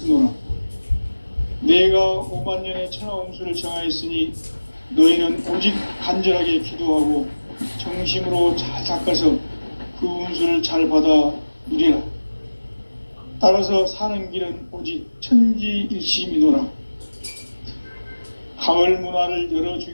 내가 5만년의 천하 운수를 정하였으니 너희는 오직 간절하게 기도하고 정심으로 잘 닦아서 그 운수를 잘 받아 누리라. 따라서 사는 길은 오직 천지일심이노라. 가을 문화를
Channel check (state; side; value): inverted; both; correlation -1.00